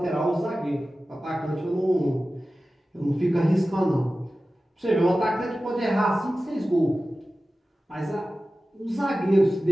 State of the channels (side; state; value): both; normal; correlation 0.95